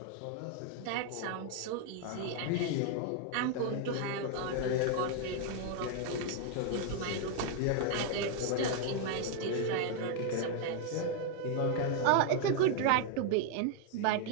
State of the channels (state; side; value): different; both; correlation 0.00